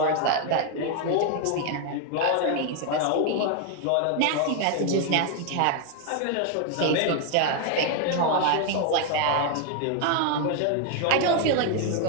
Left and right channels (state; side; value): different; both; correlation 0.00